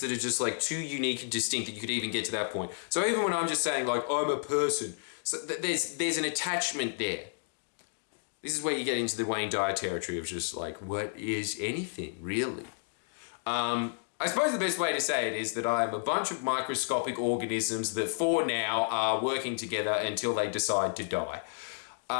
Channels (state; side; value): silent; right; digital silence